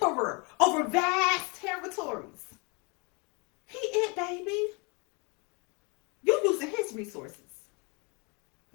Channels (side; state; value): right; quieter; 31.5 dB